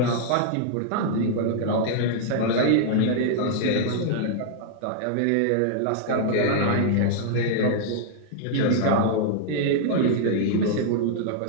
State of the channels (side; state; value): both; different; correlation -0.01